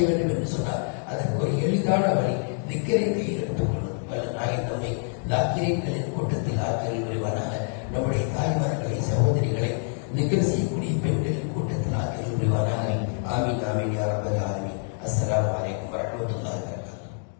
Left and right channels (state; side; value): silent; right; 57 dB below the other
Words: வேண்டும் என்று சொன்னார். அதற்கு ஒரு எளிதான வழி திக்கரை கையில் எடுத்துக் கொள்வது. வல்ல நாயன் நம்மை தாக்கிரங்களின் கூட்டத்தில் ஆக்கிரல் புரிவானாக. நம்முடைய தாய்மார்களை, சகோதரிகளை திக்கர் செய்யக்கூடிய பெண்களின் கூட்டத்தில் ஆக்கிரல் புரிவானாக. ஆமீன் ஆமீன் யா ரப்பல்